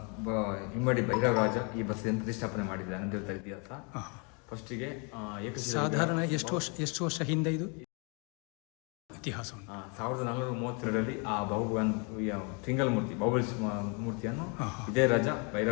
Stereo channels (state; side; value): quieter; right; 34.2 dB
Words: ಹಿಮ್ಮಡಿ ಭೈರವರಾಜ ಈ ಬಸ್ಸಿಯನ್ನು ಪ್ರತಿಷ್ಠಾಪನೆ ಮಾಡಿದ್ದಾನೆ ಅಂತ ಹೇಳ್ತಾರೆ ಇತಿಹಾಸ. ಫಸ್ಟಿಗೆ ಸಾಧಾರಣ ಎಷ್ಟು ವರ್ಷ ಹಿಂದೆ ಇದು ಇತಿಹಾಸ 1432ರಲ್ಲಿ ಆ ಸಿಂಗಲ್ ಮೂರ್ತಿ ಬಾಹುಬಲಿ ಮೂರ್ತಿಯನ್ನು ಇದೇ ರಾಜ